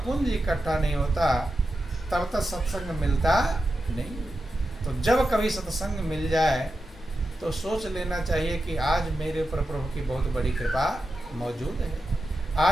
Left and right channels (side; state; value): both; normal; correlation 0.90